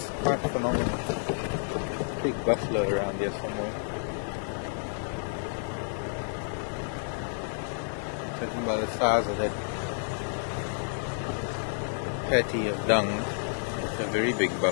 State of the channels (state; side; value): silent; right; 58 dB below the other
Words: quite phenomenal. Big buffalo around here somewhere. Judging by the size of that patty of dung, it's a very big